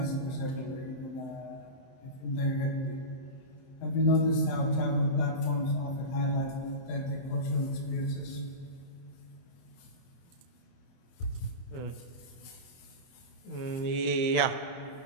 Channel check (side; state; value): right; late; 23 ms